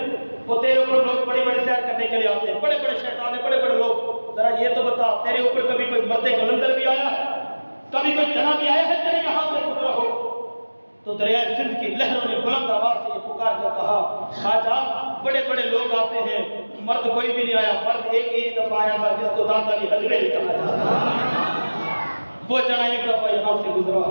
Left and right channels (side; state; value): both; inverted; correlation -1.00